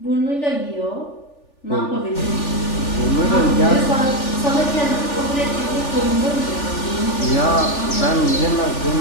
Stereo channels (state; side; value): late; right; 3.4 ms